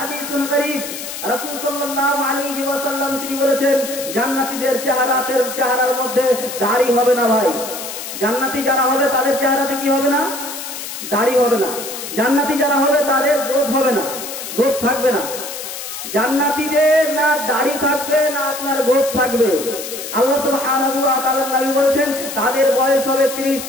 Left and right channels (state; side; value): noise; left; hiss, 8 dB below the sound